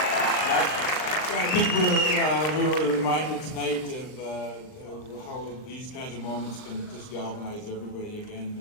I think we were reminded tonight of how these kinds of moments can just galvanize everybody again.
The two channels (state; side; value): late; right; 39 ms